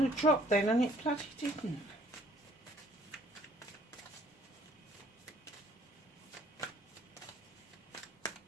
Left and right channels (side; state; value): both; normal; correlation 0.59